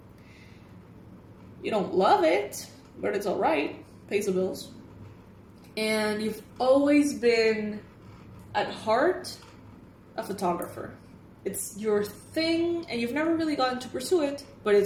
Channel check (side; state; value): both; identical; correlation 1.00